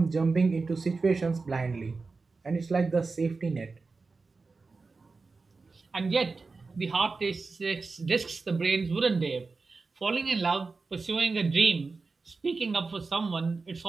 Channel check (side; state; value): left; quieter; 4.1 dB